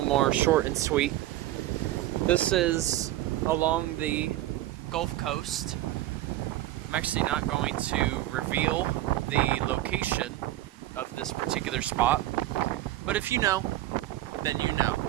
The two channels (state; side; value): quieter; left; 14.9 dB